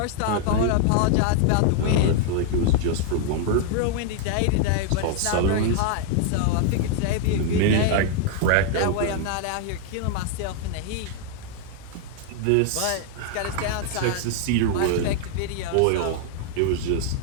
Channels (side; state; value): both; different; correlation 0.00